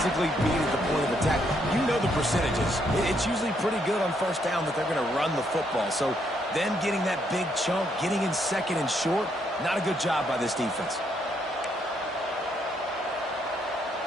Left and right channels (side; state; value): both; normal; correlation 0.74